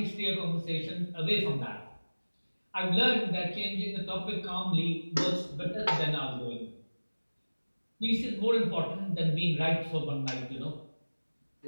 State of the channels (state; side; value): inverted; both; correlation -1.00